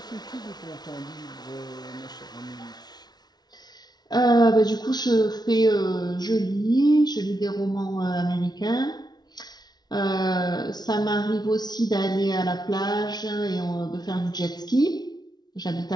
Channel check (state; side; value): late; right; 0.19 ms